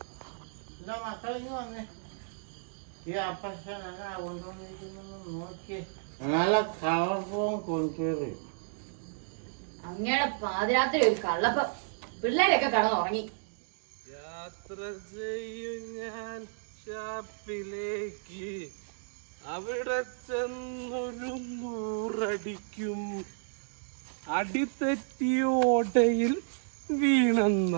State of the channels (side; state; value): left; silent; digital silence